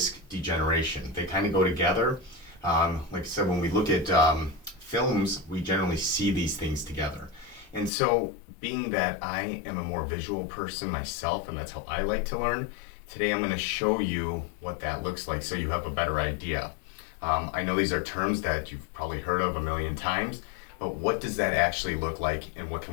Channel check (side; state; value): right; drops out; at 7.9 s